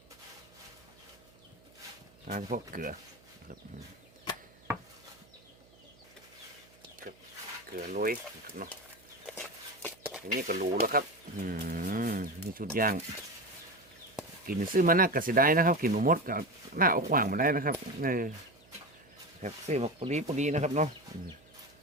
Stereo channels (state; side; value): noise; right; hum, 28 dB below the sound